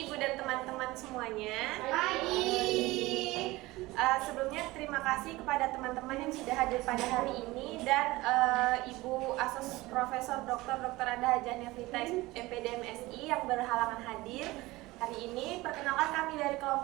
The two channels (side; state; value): left; quieter; 20.0 dB